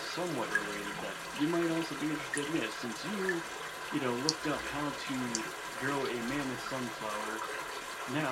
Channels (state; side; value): identical; both; correlation 1.00